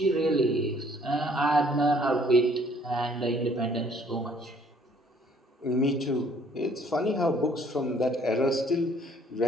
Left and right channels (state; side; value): normal; both; correlation 0.61